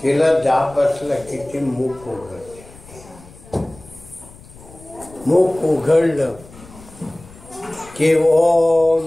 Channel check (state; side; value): noise; left; rumble, 21 dB below the sound